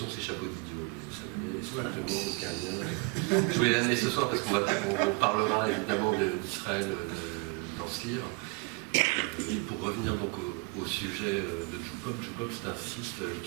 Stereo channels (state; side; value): quieter; left; 28.8 dB